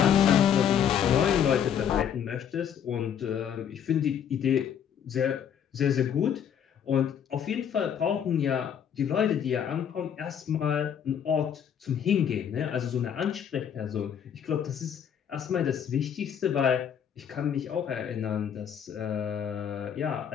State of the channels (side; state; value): right; quieter; 8.5 dB